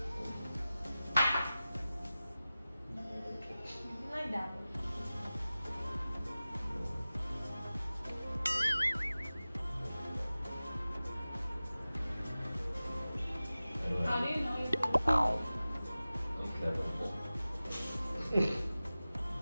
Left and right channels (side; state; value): both; inverted; correlation -0.96